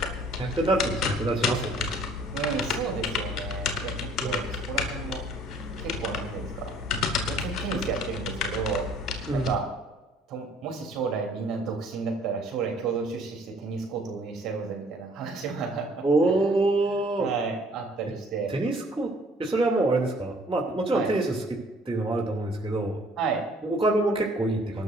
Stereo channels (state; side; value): normal; both; correlation 0.57